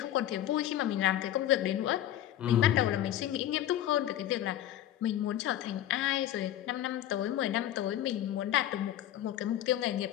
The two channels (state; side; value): quieter; right; 12.3 dB